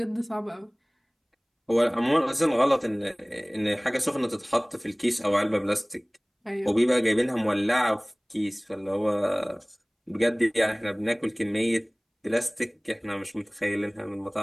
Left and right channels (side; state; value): both; identical; correlation 1.00